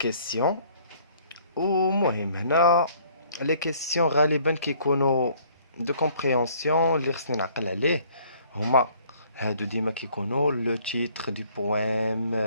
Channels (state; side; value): inverted; both; correlation -0.59